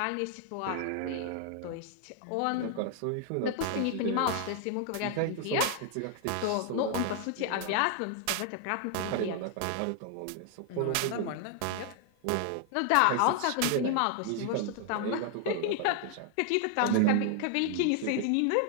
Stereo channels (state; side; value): different; both; correlation 0.00